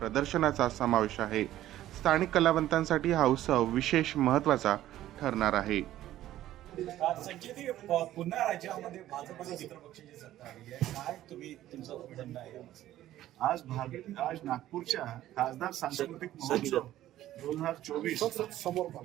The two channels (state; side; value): quieter; left; 13.6 dB